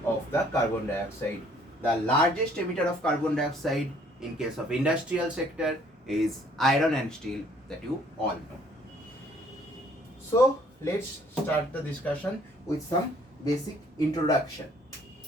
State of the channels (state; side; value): normal; both; correlation 0.61